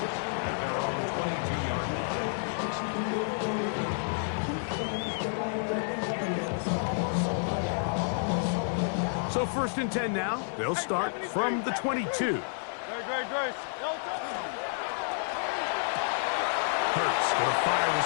At their own 22-yard line. So 1st and 10 now. They'll start from the 22. Great. Hurts going to fire this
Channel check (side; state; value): right; silent; digital silence